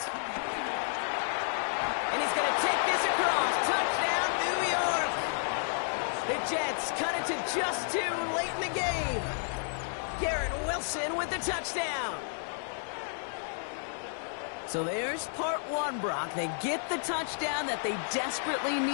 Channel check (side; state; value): right; silent; digital silence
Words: And he's going to take this across. Touchdown, New York. The Jets cut it to just 2 late in the game. Garrett Wilson with the touchdown. So there's part 1, Brock. They get the touchdown that they desperately